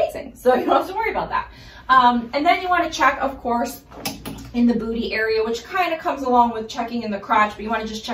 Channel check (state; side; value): identical; both; correlation 1.00